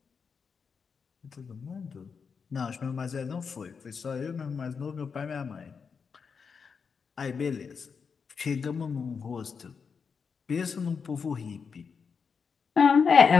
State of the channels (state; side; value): quieter; right; 5.8 dB